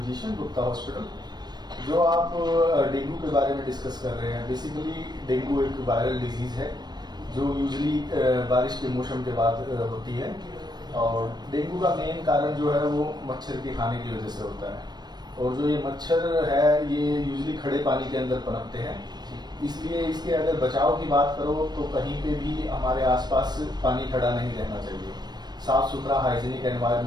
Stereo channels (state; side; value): late; left; 0.20 ms